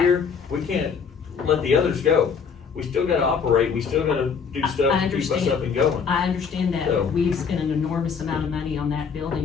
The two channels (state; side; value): quieter; right; 6.2 dB